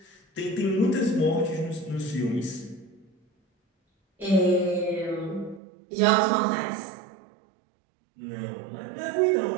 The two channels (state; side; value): drops out; left; at 5.6 s